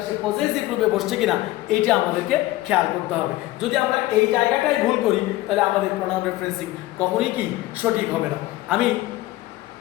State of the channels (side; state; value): right; quieter; 17.4 dB